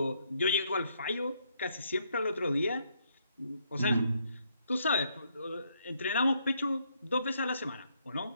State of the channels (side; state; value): both; inverted; correlation -0.73